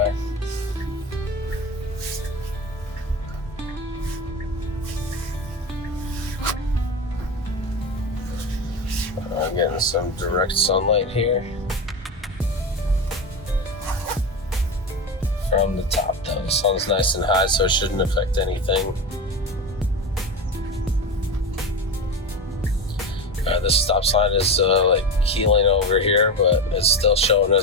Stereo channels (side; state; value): both; normal; correlation 0.22